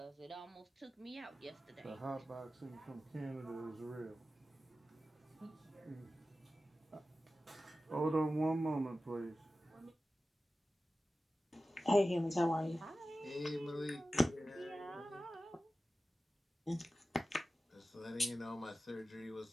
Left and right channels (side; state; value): both; normal; correlation 0.94